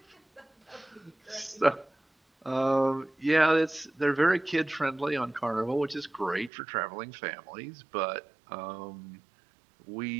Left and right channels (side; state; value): left; drops out; at 6.5 s